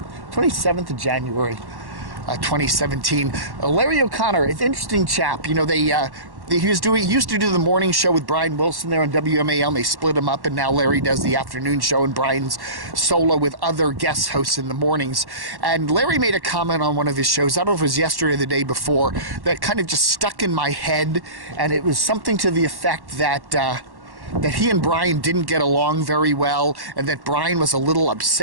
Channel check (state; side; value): late; left; 1.1 ms